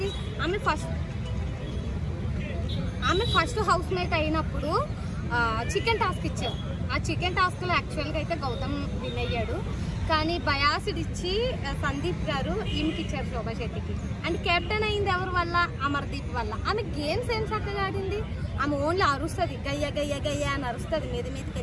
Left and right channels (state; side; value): identical; both; correlation 1.00